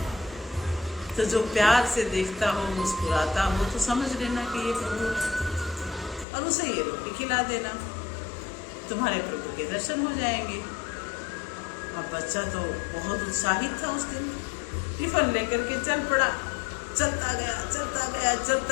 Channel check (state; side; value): drops out; right; at 6.2 s